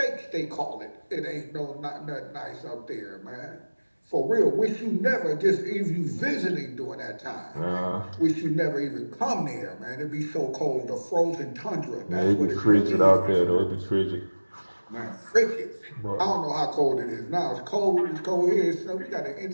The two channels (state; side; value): inverted; both; correlation -1.00